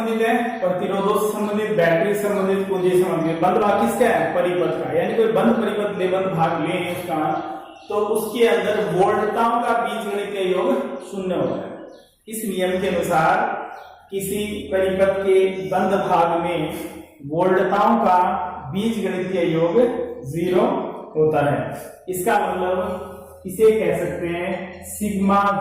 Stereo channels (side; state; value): both; identical; correlation 1.00